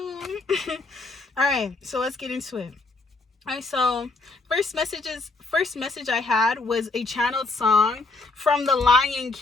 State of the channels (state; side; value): quieter; right; 3.5 dB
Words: All right, so let's get into it. All right, so first message I had was a channeled song from The Lion